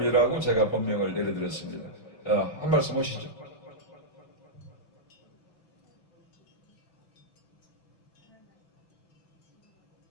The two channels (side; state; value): right; late; 5.2 ms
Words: 제가 법명을 내려드렸습니다. 한 말씀 하시죠.